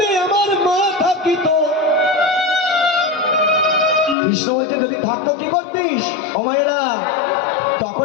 আমার মা থাকিত, কৃষ্ণ বলছে যদি থাকতো কি করতিস ও মায়েরা?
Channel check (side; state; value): right; drops out; at 4.2 s